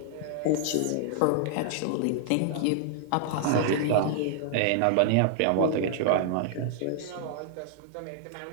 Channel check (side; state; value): both; different; correlation -0.01